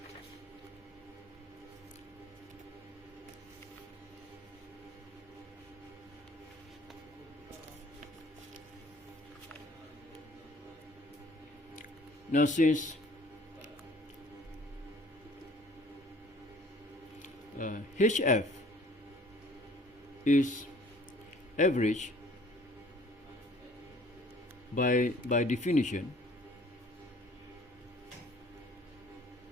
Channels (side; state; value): both; normal; correlation 0.54